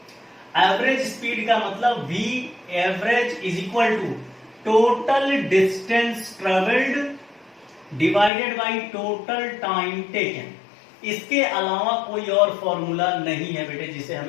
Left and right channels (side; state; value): right; drops out; at 8.3 s